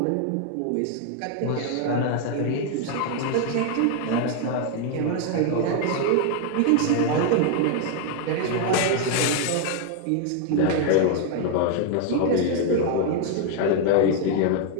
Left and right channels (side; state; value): both; different; correlation 0.00